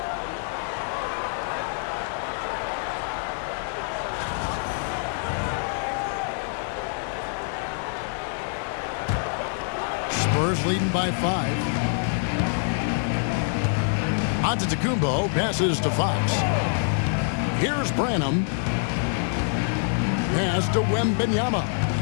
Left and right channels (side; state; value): right; silent; 61 dB below the other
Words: Spurs leading by 5. Antetokounmpo passes to Fox. Here's Branham. Pass to WEMBY.